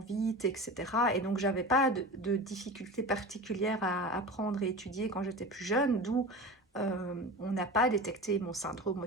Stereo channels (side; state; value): both; normal; correlation 0.31